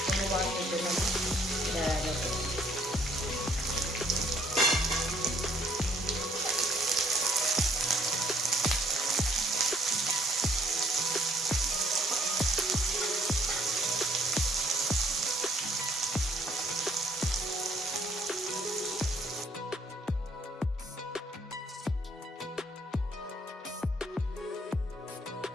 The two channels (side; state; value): both; normal; correlation 0.63